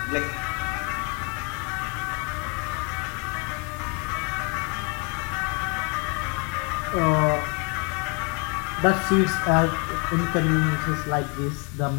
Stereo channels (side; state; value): right; quieter; 33.9 dB